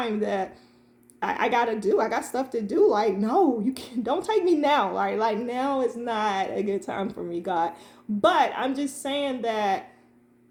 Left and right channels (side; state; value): both; identical; correlation 1.00